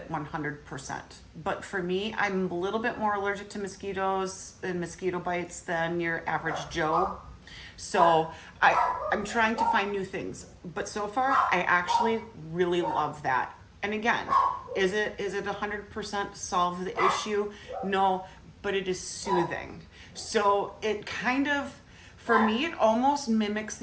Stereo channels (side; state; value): both; identical; correlation 1.00